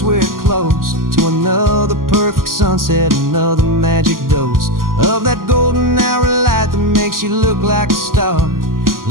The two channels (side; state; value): left; late; 0.91 ms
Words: we're close to another perfect sunset, another magic dose of that golden hour light that makes makes you look like a star,